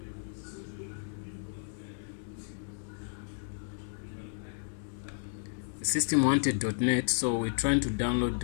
the system wanted .NET, so we're trying to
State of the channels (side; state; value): right; silent; digital silence